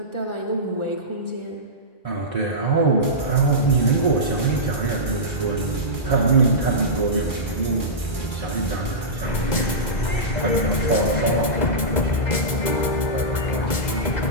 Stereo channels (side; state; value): right; late; 2.0 ms